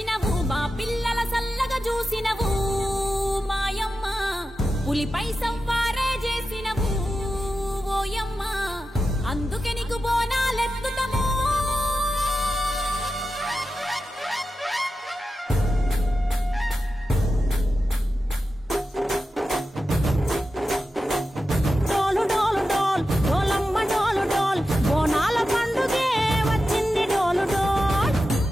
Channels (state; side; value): normal; both; correlation 0.91